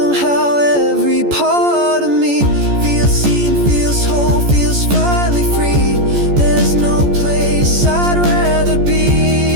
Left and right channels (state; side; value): late; left; 14 ms